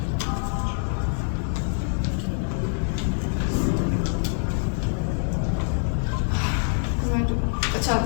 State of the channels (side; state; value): right; silent; 62 dB below the other